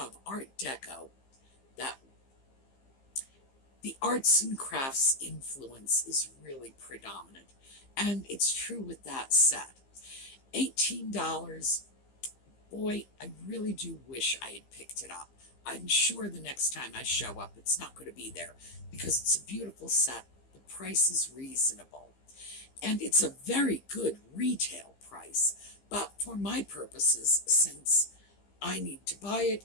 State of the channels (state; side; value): late; right; 15 ms